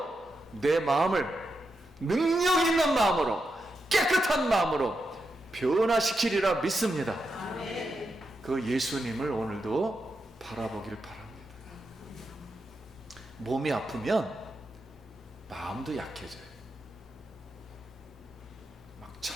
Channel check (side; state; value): both; normal; correlation 0.86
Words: 내 마음을 능력 있는 마음으로, 깨끗한 마음으로 변화시키리라 믿습니다. 그 예수님을 오늘도 바라보기를 바랍니다. 몸이 아프면 마음도 약해져요. 막